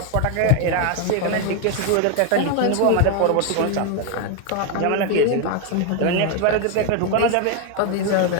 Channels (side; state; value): both; different; correlation 0.01